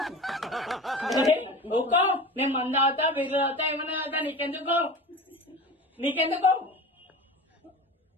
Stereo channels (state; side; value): normal; both; correlation 0.33